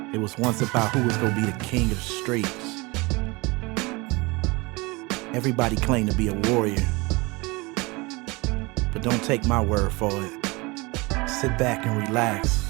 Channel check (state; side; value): quieter; left; 24.8 dB